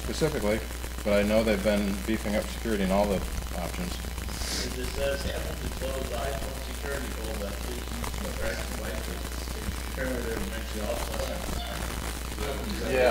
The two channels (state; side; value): identical; both; correlation 1.00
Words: specifically, but I know they've been beefing up security in all the options. It says happen to close iPhone security folder, please use the correct devices. Apparently they're mentioned also.